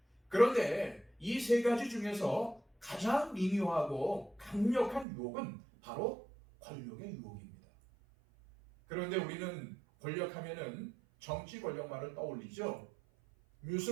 그런데 이 3가지 중에서 가장 미묘하고 강력한 유혹은 바로 권력의 유혹입니다. 그런데 우리는 권력하면은 정치 권력만을 떠올리죠.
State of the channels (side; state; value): left; drops out; at 5.1 s